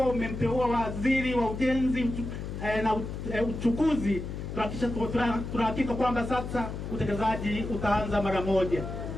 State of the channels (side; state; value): left; noise; hum, 6 dB below the sound